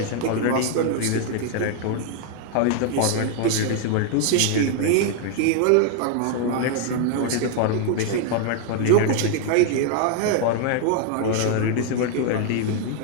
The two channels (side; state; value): both; different; correlation 0.00